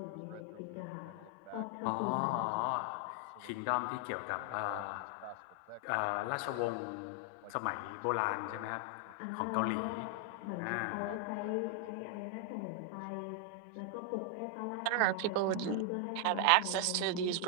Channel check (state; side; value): different; both; correlation 0.00